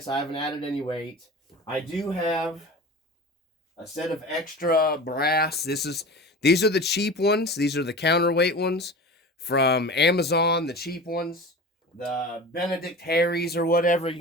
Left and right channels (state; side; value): normal; both; correlation 0.34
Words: I haven't added any weight. I do have a set of extra brass. These are the cheap ones. These are the counterweight ones from Amazon, the cheap ones. The Benedict Harry's or whatever you